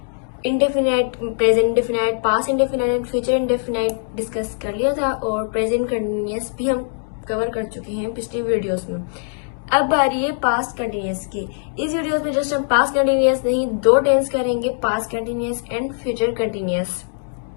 indefinite, present indefinite, past indefinite and future indefinite discuss कर लिया था, और प्रेजेंट कंटिन्यूस भी हम कवर कर चुके हैं पिछली वीडियोस में। अब बारी है पास्ट कंटिन्यूस की। इस वीडियो में जस्ट हम पास्ट कंटिन्यूस नहीं, 2 टेंस करेंगे, past continuous and future continuous.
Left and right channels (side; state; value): right; silent; digital silence